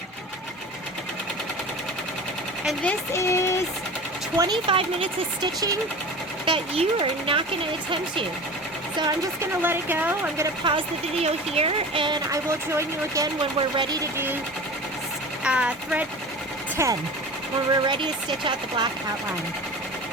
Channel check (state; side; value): normal; both; correlation 0.35